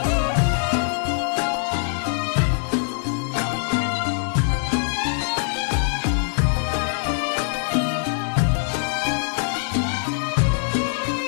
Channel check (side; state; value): right; silent; digital silence